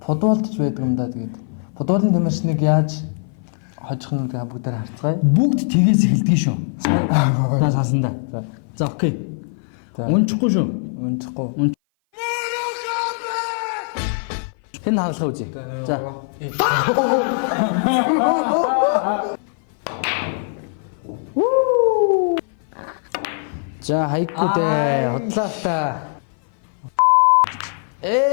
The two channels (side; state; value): right; silent; 57 dB below the other